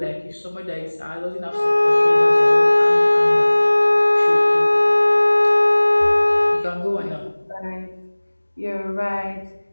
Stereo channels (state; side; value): inverted; both; correlation -1.00